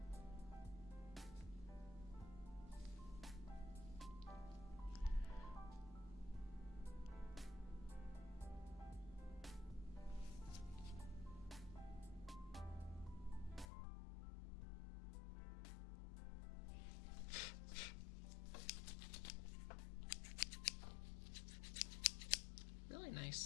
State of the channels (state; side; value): drops out; right; at 13.7 s